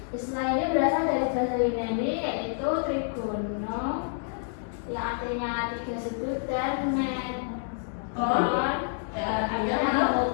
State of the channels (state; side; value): silent; right; digital silence